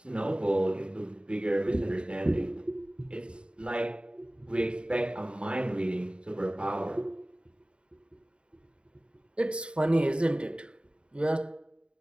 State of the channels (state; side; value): late; left; 0.054 ms